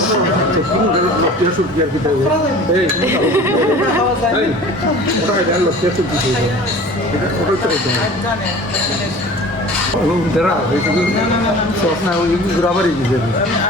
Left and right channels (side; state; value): both; normal; correlation 0.42